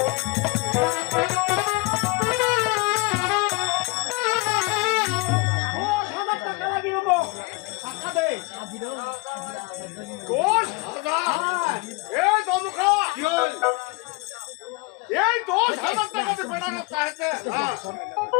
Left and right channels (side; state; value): right; quieter; 26.8 dB